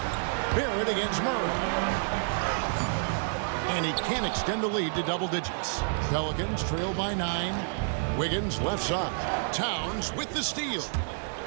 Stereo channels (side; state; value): left; silent; 58 dB below the other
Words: Barrett against Murray. And he can't extend the lead to double digits. Pelicans trail by 9. Wiggins left side. Towns with the steal.